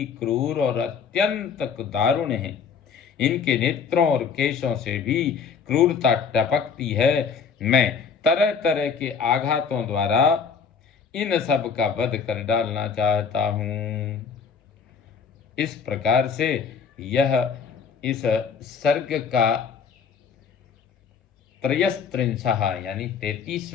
क्रूर और अत्यंत दारुण हैं। इनके नेत्रों और केशों से भी क्रूरता टपकती है। मैं तरह तरह के आघातों द्वारा इन सब का वध कर डालना चाहता हूँ। इस प्रकार से यह इस सर्ग का 33वां यानी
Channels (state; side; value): quieter; right; 6.2 dB